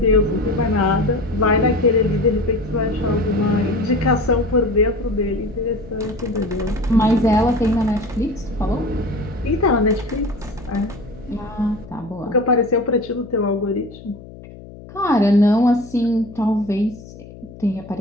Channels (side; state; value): left; noise; hum, 17 dB below the sound